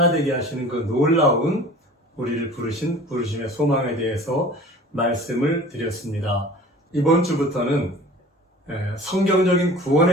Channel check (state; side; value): normal; both; correlation 0.43